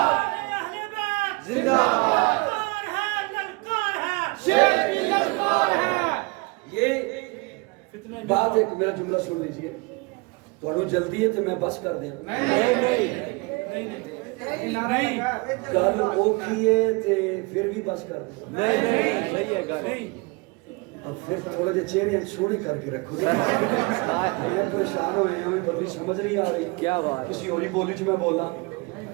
اہل بیت زندہ باد. للکار ہے شیر کی للکار ہے. یہ بات ایک میرا جملہ سن لیجئے. تھوڑا جلدی ہے تو میں بس کر دیا. نہیں گل اوکھی ہے تے پھر بھی بس کر دیا. نہیں صحیح ہے گل. اب پھر تھوڑے جے چہرے سونے کر کے رکھو. میں پریشان ہوئے ہیں ہمیں بدلی سمجھ نہیں آ رہی. کیا بات. کسی اور بولی چ میں بولا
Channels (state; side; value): quieter; left; 27.3 dB